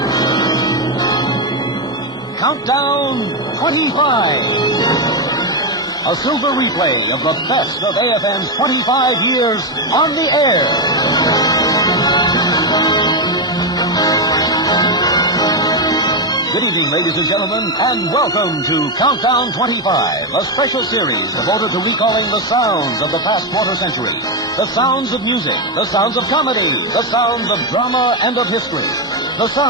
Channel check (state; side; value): normal; both; correlation 0.07